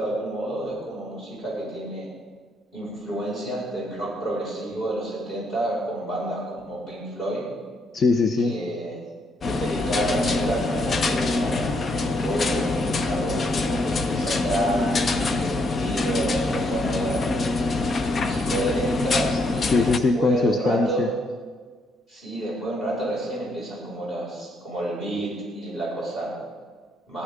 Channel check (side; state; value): both; normal; correlation 0.74